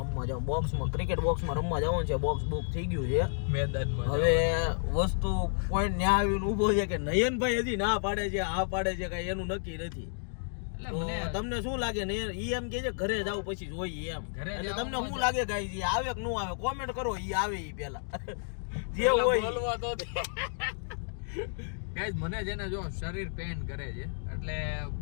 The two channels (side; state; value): right; silent; digital silence